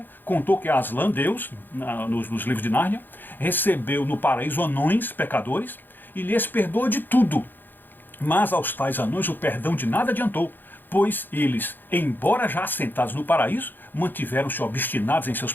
contou que Aslan, Deus, nos livros de Nárnia, recebeu no paraíso anões pecadores e lhes perdoou de tudo. Mas aos tais anões o perdão de nada adiantou, pois eles, embora já assentados no paraíso, mantiveram-se obstinados em seus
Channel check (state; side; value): late; right; 0.092 ms